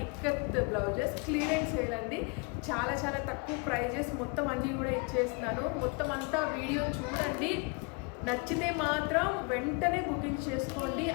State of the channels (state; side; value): quieter; right; 31.6 dB